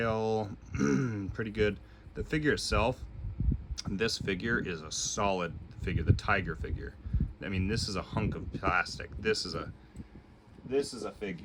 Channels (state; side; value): identical; both; correlation 1.00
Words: pretty good. The figure itself, this figure is a solid figure, the tiger figure. I mean, this is a hunk of plastic. This is a